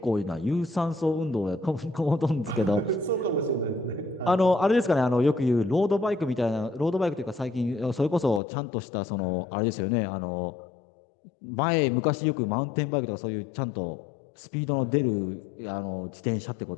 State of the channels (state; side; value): drops out; right; at 8.4 s